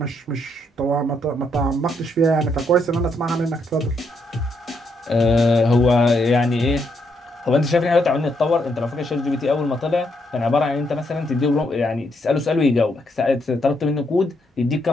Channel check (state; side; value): normal; both; correlation 0.76